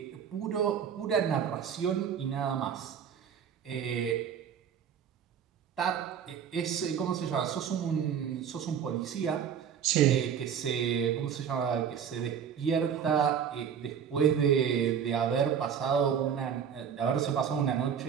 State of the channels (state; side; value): quieter; left; 8.0 dB